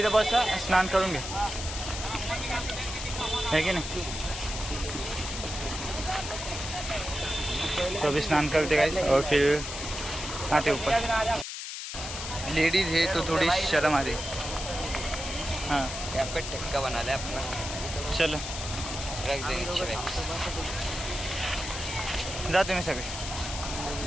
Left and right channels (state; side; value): noise; left; hiss, 7 dB below the sound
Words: बस स्नान करून घे है की नहीं. तो अभी स्नान करते गाइस और फिर आते ऊपर. लेडीज है तो थोड़ी शर्म आ रही. हाँ यहाँ पे टिक्का बना ले अपना. चलो रख देंगे जा तुम्ही सगळे.